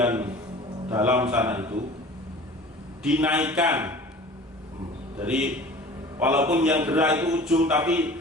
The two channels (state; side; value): normal; both; correlation 0.43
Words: dalam sana itu dinaikkan. Jadi walaupun yang gerak itu ujung, tapi